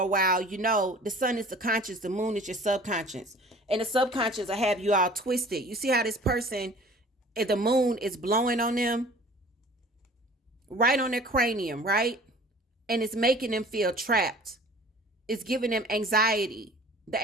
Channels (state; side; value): normal; both; correlation 0.47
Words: a while, you know the sun is the conscious, the moon is your subconscious. And the subconscious will have you all twisted. You see how this person, the moon is blowing on them? Right on their cranium, right? And it's making them feel trapped. It's giving them anxiety.